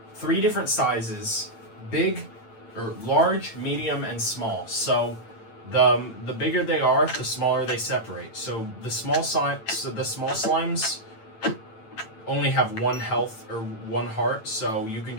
3 different sizes: big, or large, medium, and small. So the bigger they are, the smaller they separate. So the small slimes only have 1 health or 1 heart, so you can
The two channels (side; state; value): right; late; 8.9 ms